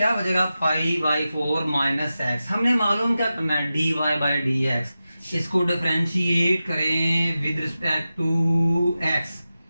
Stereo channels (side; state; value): both; inverted; correlation -0.93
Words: बचेगा पाई बाई 4 माइनस एक्स। हमने मालूम क्या करना है dy बाई डी एक्स, इसको डिफरेंशिएट करें विद रिस्पेक्ट टू x।